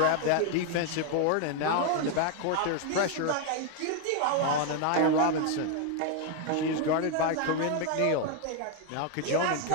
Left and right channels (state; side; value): different; both; correlation 0.01